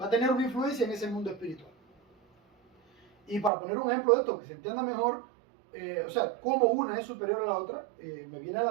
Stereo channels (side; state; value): left; drops out; at 3.5 s